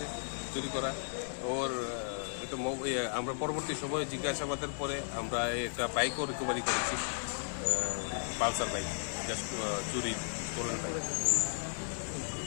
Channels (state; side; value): silent; right; 54 dB below the other